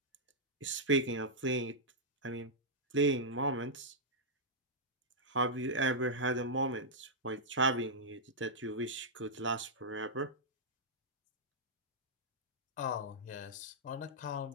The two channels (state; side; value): normal; both; correlation -0.09